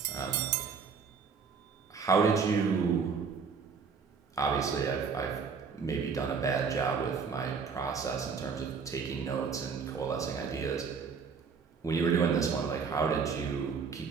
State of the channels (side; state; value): left; quieter; 5.7 dB